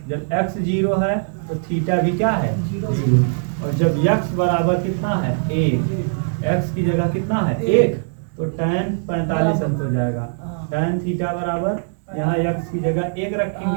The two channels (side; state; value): left; silent; digital silence